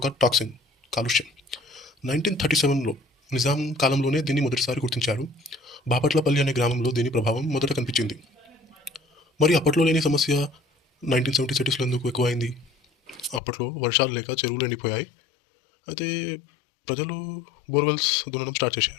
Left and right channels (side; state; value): right; drops out; at 13.4 s